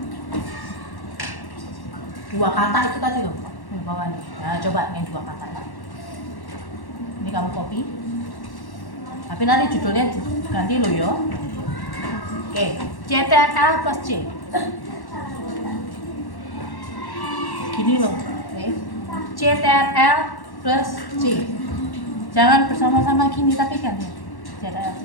Dua kata itu tadi loh, di bawah nih. Nah, coba yang 2 kata ini kamu copy, tapi nanti judulnya ganti loh yo. Oke, CTRL plus C. Gini loh, oke. CTRL plus C. Jangan bersama-sama gini tapi ganti. CTRL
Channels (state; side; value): late; right; 1.1 ms